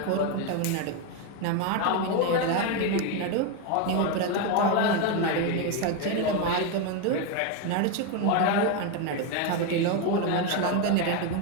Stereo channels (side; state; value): both; different; correlation 0.02